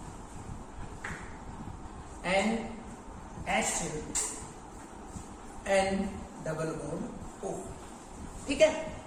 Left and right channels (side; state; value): both; identical; correlation 1.00